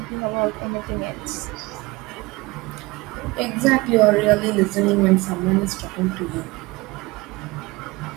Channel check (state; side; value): quieter; left; 22.7 dB